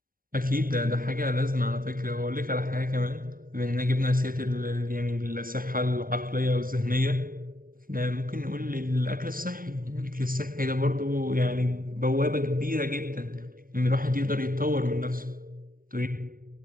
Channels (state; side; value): late; left; 0.41 ms